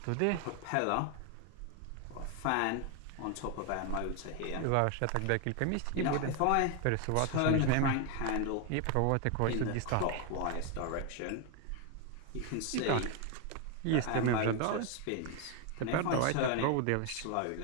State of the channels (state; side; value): different; both; correlation 0.01